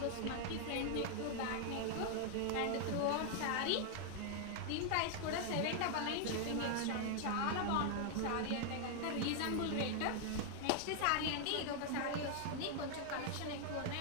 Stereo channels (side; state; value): both; different; correlation 0.00